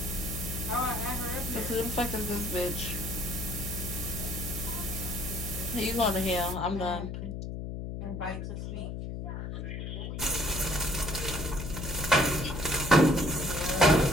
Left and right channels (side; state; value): left; noise; hum, 5 dB below the sound